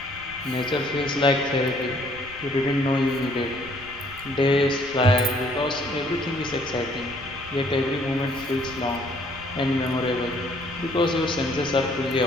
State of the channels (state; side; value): noise; right; rumble, 19 dB below the sound